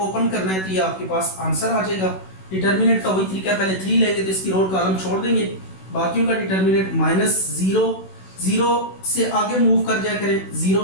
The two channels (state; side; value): late; right; 16 ms